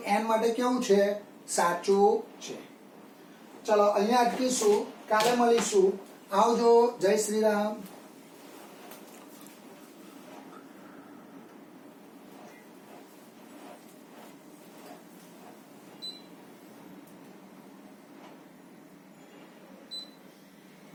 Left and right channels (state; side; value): identical; both; correlation 1.00